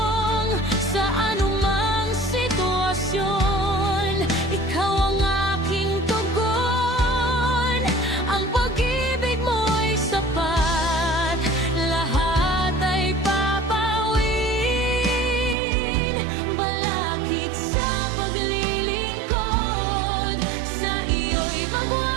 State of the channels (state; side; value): drops out; left; at 15.6 s